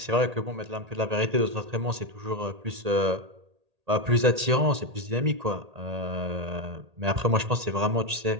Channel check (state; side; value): late; left; 1.8 ms